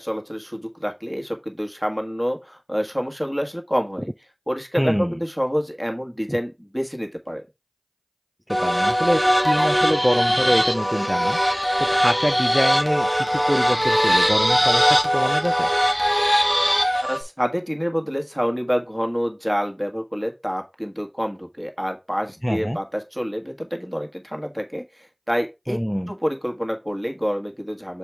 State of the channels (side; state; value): both; identical; correlation 1.00